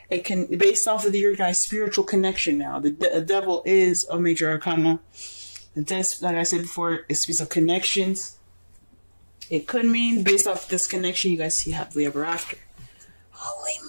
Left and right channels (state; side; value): inverted; both; correlation -1.00